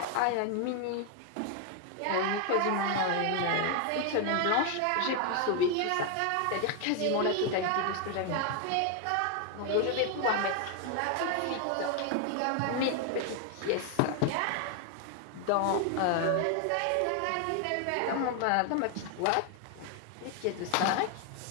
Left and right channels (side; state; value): both; different; correlation 0.01